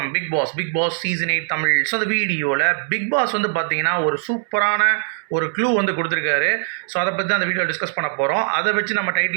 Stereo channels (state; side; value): silent; left; 65 dB below the other